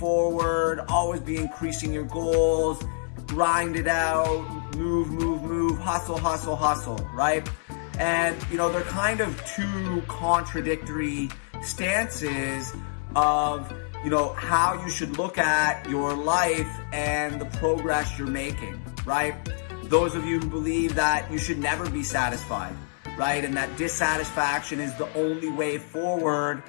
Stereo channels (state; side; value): silent; right; digital silence